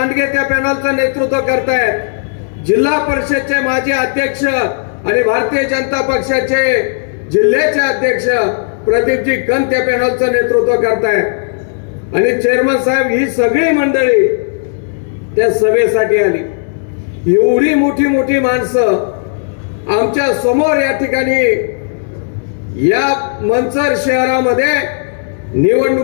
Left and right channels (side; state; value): right; silent; digital silence